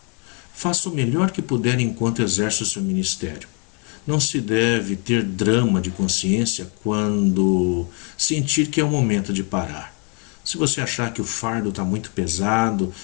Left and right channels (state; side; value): quieter; right; 36.8 dB